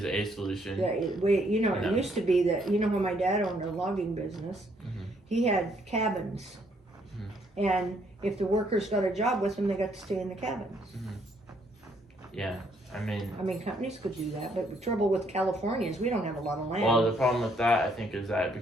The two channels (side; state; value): both; normal; correlation 0.69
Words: a solution. Yeah, it No. used to be that, when my dad owned a logging business, Mhm. he had cabins. And if the workers got a job with him, they got to stay in the cabins. Yeah, I mean, Companies could do that, but the trouble with California is we don't have a lot of land. well, the problem with that, I think, is that it